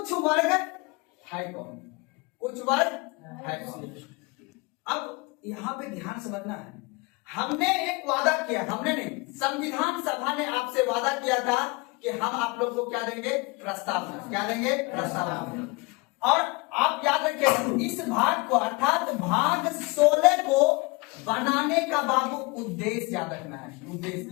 वर्ग है कौन? कुछ वर्ग है कौन? अब यहाँ पे ध्यान समझना है। हमने एक वादा किया, हमने नहीं, संविधान सभा ने आपसे वादा किया था कि हम आप लोग को क्या देंगे? प्रस्तावना। क्या देंगे? प्रस्तावना। और आप याद रखिए इस भाग को अर्थात भाग 16 को बनाने का बाबू उद्देश्य याद रखना है।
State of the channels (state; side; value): quieter; right; 26.1 dB